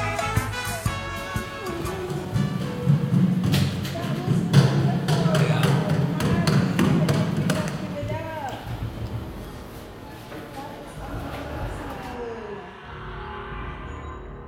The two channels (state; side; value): identical; both; correlation 1.00